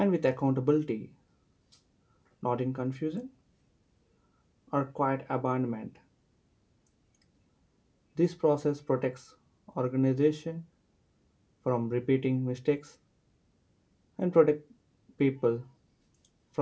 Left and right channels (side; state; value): both; identical; correlation 1.00